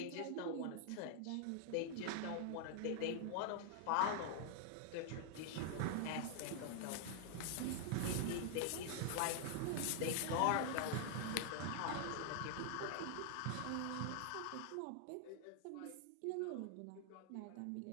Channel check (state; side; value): different; both; correlation 0.00